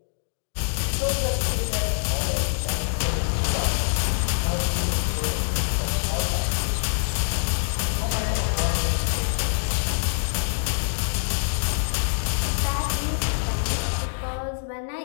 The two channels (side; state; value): right; silent; digital silence